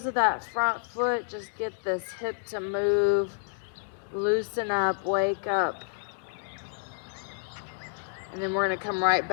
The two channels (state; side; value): silent; right; digital silence